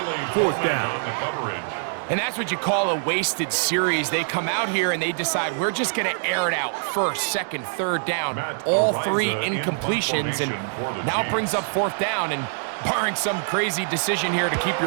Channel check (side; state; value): left; silent; digital silence